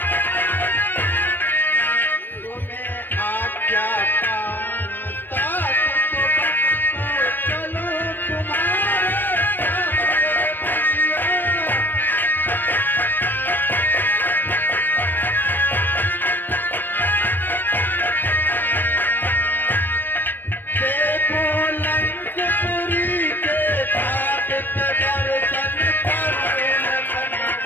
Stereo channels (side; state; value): right; late; 0.092 ms